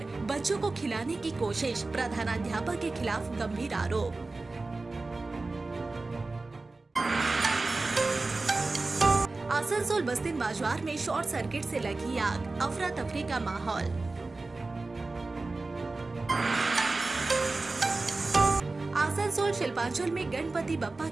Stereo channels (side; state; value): left; quieter; 3.4 dB